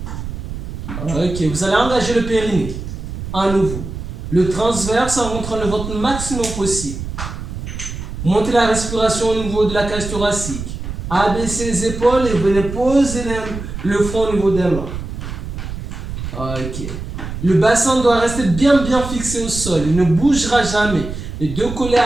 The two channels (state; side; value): noise; right; rumble, 7 dB below the sound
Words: Ok, vous allez engager le périnée. À nouveau. Le transverse en montrant le ventre le maximum possible. Montez la respiration au niveau de la cage thoracique. Abaissez les épaules et venez poser le front au niveau des mains. Ok. Le bassin doit rester bien fixé au sol. Il ne bougera jamais. Les deux collés